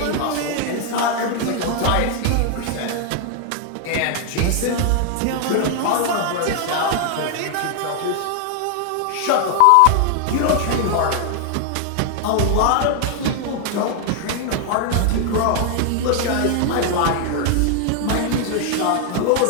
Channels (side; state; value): both; different; correlation 0.00